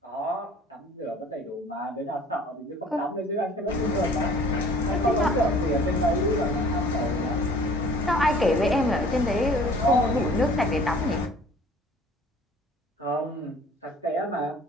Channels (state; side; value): normal; both; correlation 0.50